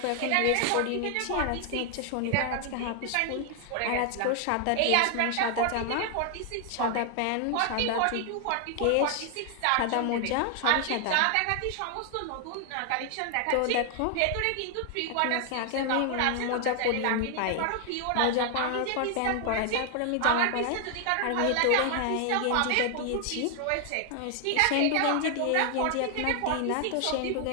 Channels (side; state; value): both; different; correlation 0.00